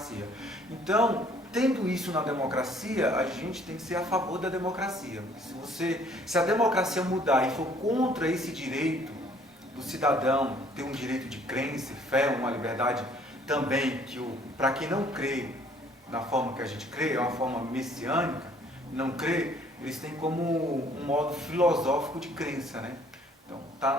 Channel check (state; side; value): normal; both; correlation 0.59